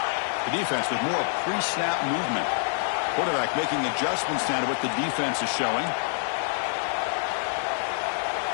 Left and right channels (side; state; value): right; silent; digital silence